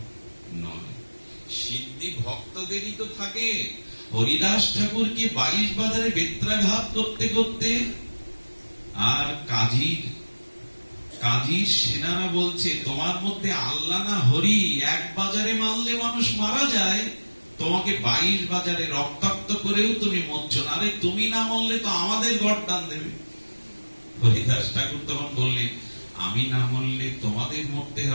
নয়। সিদ্ধি ভক্তদেরই তো থাকে। হরিদাস ঠাকুরকে 22 বাজারে বেত্রাঘাত করতে করতে, আর কাজীর সেনারা বলছে তোমার মধ্যে আল্লাহ না হরি, এক বাজারে মারলে মানুষ মারা যায়, তোমাকে 22 বাজারে রক্তাক্ত করেও তুমি মরছ না, আরে তুমি না মরলে তো আমাদের গর্দান দেবে। হরিদাস ঠাকুর তখন বললেন আমি না মরলে তোমাদের মরতে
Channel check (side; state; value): both; inverted; correlation -1.00